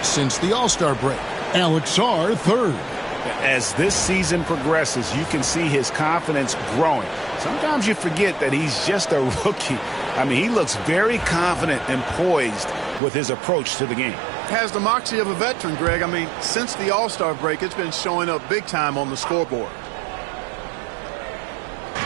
since the All-Star break. Alex Sarr, 3rd. As this season progresses, you can see his confidence growing. Sometimes you forget that he's just a rookie. I mean, he looks very confident and poised with his approach to the game. Has the moxie of a veteran, Greg. I mean, since the All-Star break, it's been showing up big time on the scoreboard.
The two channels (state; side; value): drops out; left; at 13.0 s